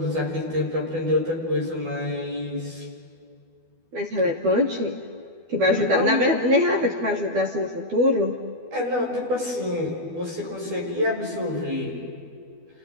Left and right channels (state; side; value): late; left; 12 ms